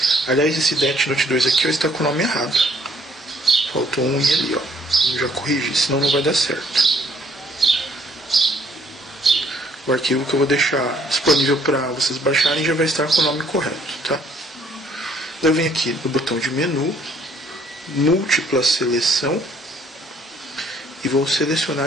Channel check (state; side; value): normal; both; correlation 0.64